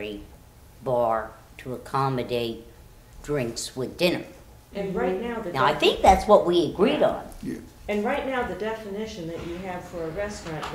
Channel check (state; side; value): identical; both; correlation 1.00